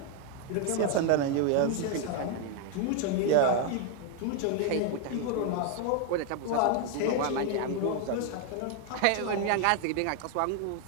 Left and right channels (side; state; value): both; different; correlation 0.00